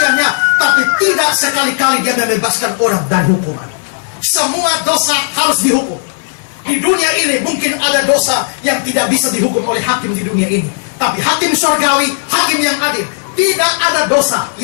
tapi tidak sekali-kali dia membebaskan orang dari hukuman. Semua dosa harus dihukum. Di dunia ini mungkin ada dosa yang tidak bisa dihukum oleh hakim di dunia ini, tapi hakim surgawi, hakim yang adil, tidak ada dosa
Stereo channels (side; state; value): right; silent; digital silence